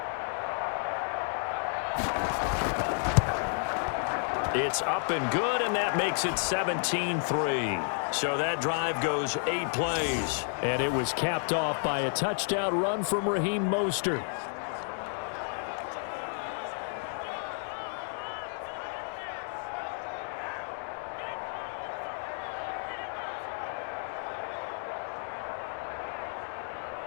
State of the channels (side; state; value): right; silent; 57 dB below the other